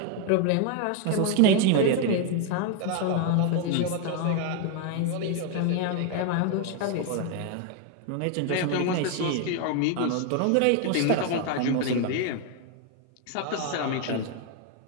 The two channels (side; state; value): both; different; correlation 0.01